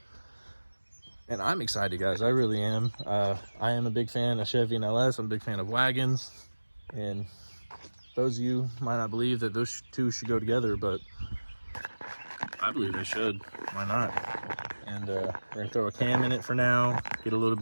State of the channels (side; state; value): both; inverted; correlation -1.00